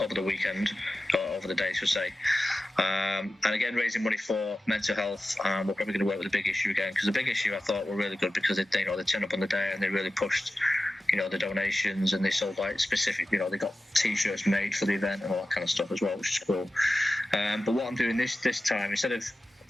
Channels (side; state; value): both; normal; correlation 0.94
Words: the weekend, or over the day, should say. And again, raising money for mental health. We're probably going to work with the big issue again, because the big issue I thought were really good, because they turned up on the day and they really pushed, the donations, and they sold like specific, they got T-shirts made for the event and all that kind of stuff as well, which is cool. But what I'm doing this time, instead of